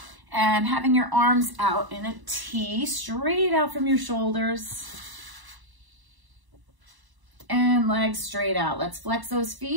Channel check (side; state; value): left; late; 1.0 ms